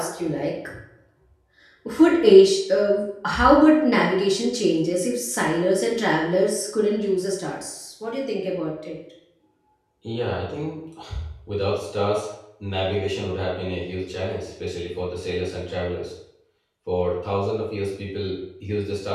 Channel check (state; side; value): identical; both; correlation 1.00